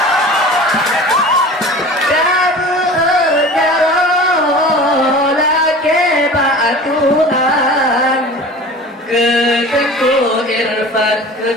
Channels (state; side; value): normal; both; correlation 0.39